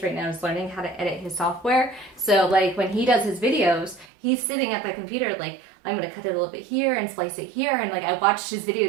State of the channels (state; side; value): drops out; left; at 4.0 s